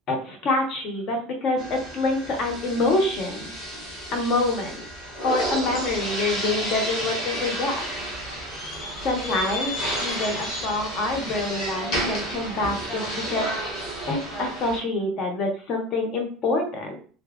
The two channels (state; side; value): normal; both; correlation 0.30